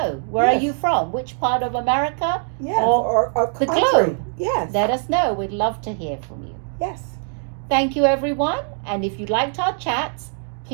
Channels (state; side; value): silent; left; 60 dB below the other